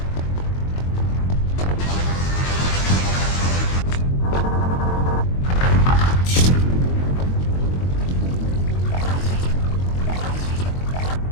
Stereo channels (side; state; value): right; late; 22 ms